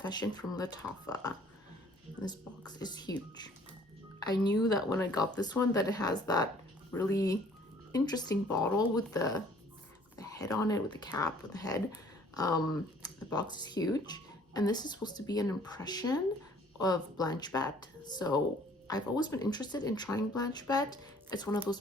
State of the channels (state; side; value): normal; both; correlation 0.56